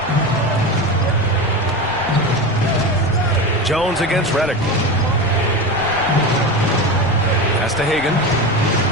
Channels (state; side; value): noise; left; rumble, 15 dB below the sound